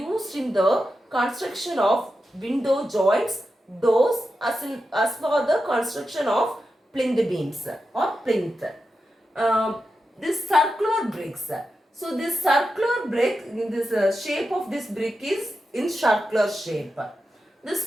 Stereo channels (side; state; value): both; normal; correlation 0.89